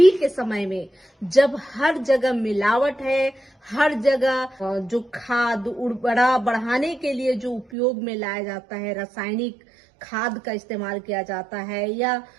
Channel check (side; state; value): left; drops out; at 7.7 s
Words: के समय में जब हर जगह मिलावट है, हर जगह जो खाद उर्वरा बढ़ाने के लिए जो उपयोग में लाया जाता है, रासायनिक खाद का इस्तेमाल किया जाता है, या